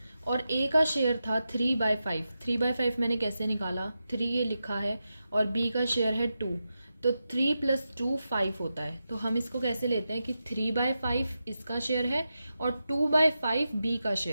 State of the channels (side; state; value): both; inverted; correlation -0.90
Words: और ए का शेयर था 3/5। 3/5 मैंने कैसे निकाला? 3 ये लिखा है और बी का शेयर है 2, तो 3 + 2 5 होता है। तो हम इसको कैसे लेते हैं कि 3/5 इसका शेयर है और 2/5 बी का